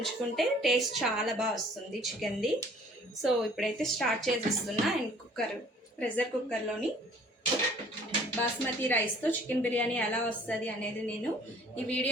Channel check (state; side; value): normal; both; correlation 0.54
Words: టేస్ట్ చాలా బాగా వస్తుంది చికెన్ది. సో ఇప్పుడైతే స్టార్ట్ చేసేస్తున్నా. అండ్ ప్రెషర్ కుక్కర్లోని బాస్మతి రైస్తో చికెన్ బిర్యానీ ఎలా వస్తుంది అనేది నేను ఈ